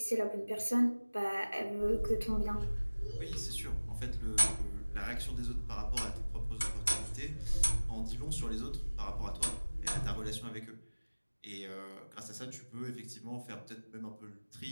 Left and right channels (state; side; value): inverted; both; correlation -1.00